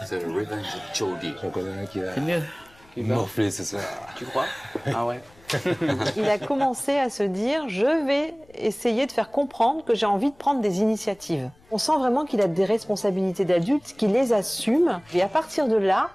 C'est le revenge de Jordi. J'en connais un qui va C'est mieux. morfler ce soir. Tu crois? Ah ouais. Il a commencé à se dire, je vais essayer de faire comprendre que j'ai envie de prendre des initiatives. On sent vraiment qu'il a des responsabilités d'adulte, qu'il les assume. Et à partir de là,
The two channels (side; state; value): left; noise; rumble, 28 dB below the sound